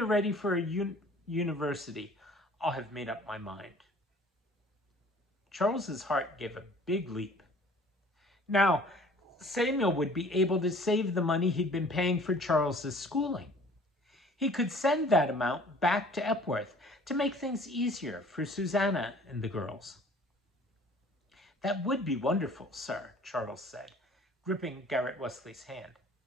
ready for a university, I'll have made up my mind." Charles's heart gave a big leap. Now, Samuel would be able to save the money he'd been paying for Charles's schooling. He could send that amount back to Epworth to make things easier for Susanna and the girls. That would be wonderful, sir, Charles said, gripping Garrett Wesley's hand.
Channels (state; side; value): normal; both; correlation 0.51